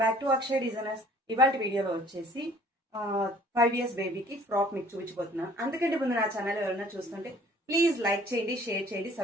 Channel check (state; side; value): normal; both; correlation 0.54